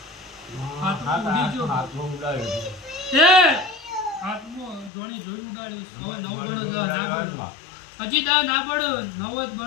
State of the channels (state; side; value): drops out; right; at 4.9 s